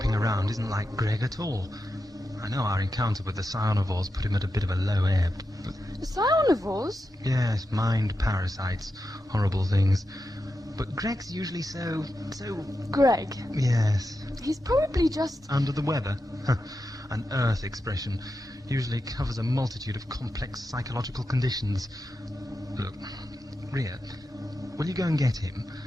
around isn't like Greg at all. I know our encounter with the Cyanivores put him at a bit of a low ebb, but... The Cyanivores? Yes, mind parasites. Horrible things. But Greg's usually so... Greg. Yes. He's probably just... Under the weather. An Earth expression. Usually covers a multitude of complex psychological conditions. Look, Ria, will you go and get him?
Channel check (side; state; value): both; normal; correlation 0.89